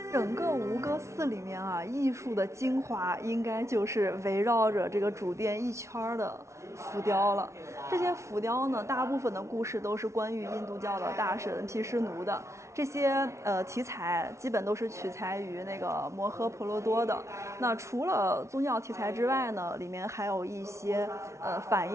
整个吴哥寺里面艺术的精华应该就是围绕着这个主殿一圈的浮雕了。这些浮雕呢，大部分的故事都是关于印度教的大神毗湿奴的。这些题材基本都是取材于那个摩诃婆罗多的。那除了宗教题材之外呢，里面还有一些反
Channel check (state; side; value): late; left; 0.14 ms